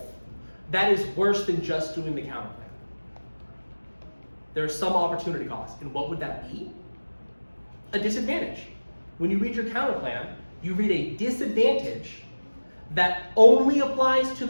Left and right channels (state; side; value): inverted; both; correlation -1.00